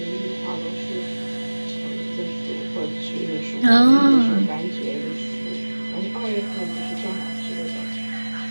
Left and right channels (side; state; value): both; inverted; correlation -1.00